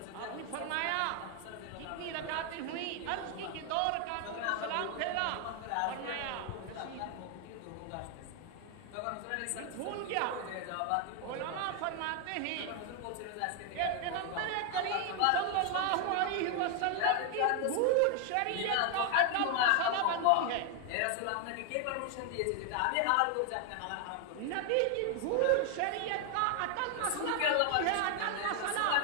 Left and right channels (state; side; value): different; both; correlation 0.00